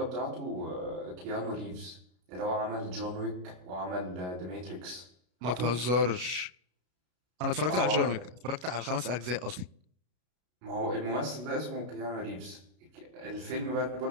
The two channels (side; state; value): left; late; 33 ms